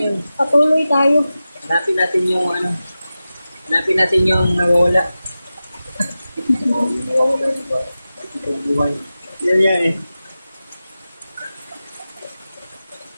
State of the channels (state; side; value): inverted; both; correlation -0.94